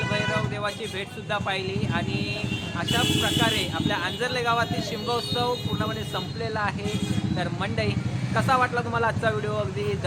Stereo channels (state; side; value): identical; both; correlation 1.00